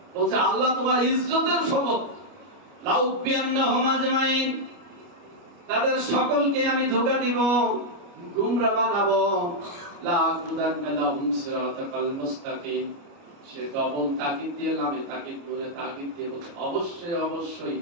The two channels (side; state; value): left; late; 29 ms